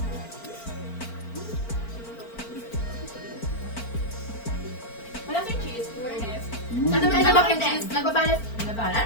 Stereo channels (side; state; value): right; late; 4.4 ms